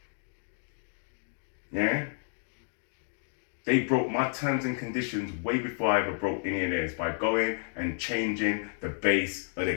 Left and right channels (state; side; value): silent; right; 57 dB below the other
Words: Yeah? They broke my terms and conditions way before I ever broke any of theirs by going and changing the base of the